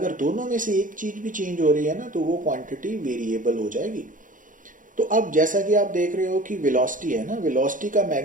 दोनों में से एक चीज भी चेंज हो रही है ना तो वो क्वांटिटी वेरिएबल हो जाएगी। तो अब जैसा कि आप देख रहे हो कि वेलोसिटी है ना, वेलोसिटी का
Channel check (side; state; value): left; late; 0.38 ms